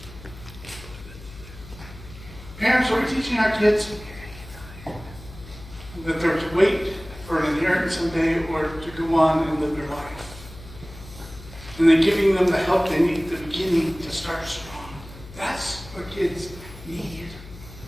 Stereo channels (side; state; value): left; noise; hum, 16 dB below the sound